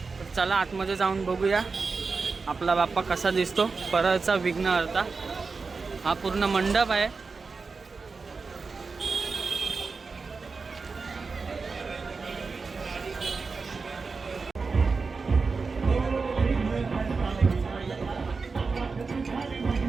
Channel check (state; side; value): quieter; left; 4.5 dB